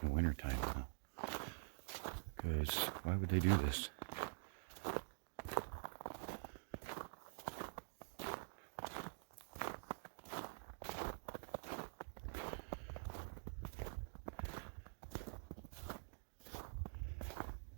in the wintertime now. Because why would they do this?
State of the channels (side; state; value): left; silent; digital silence